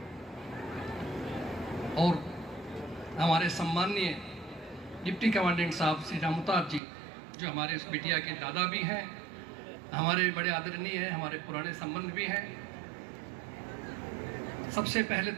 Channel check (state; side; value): drops out; left; at 6.8 s